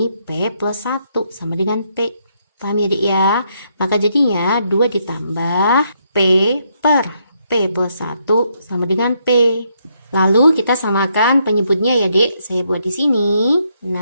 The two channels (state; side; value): inverted; both; correlation -0.75